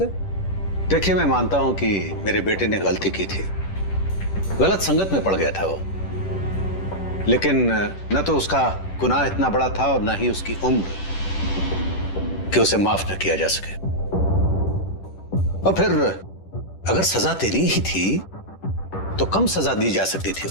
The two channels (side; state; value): right; late; 10 ms